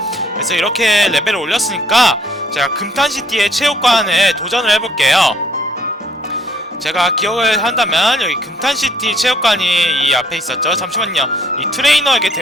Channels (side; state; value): both; normal; correlation 0.64